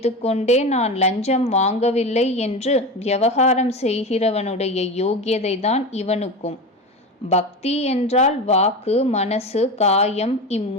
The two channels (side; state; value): both; normal; correlation 0.24